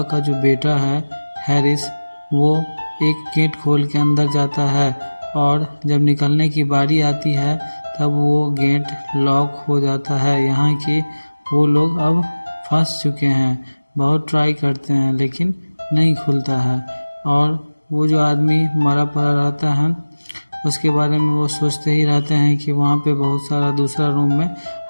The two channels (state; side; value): inverted; both; correlation -1.00